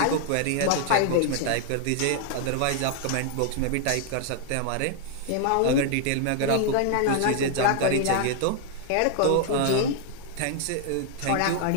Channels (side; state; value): both; different; correlation 0.00